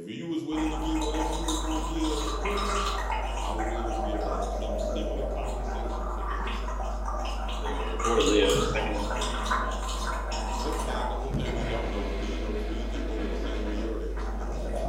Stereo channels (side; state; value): both; identical; correlation 1.00